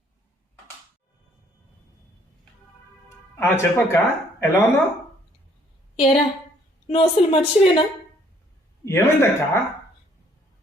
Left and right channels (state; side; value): normal; both; correlation 0.63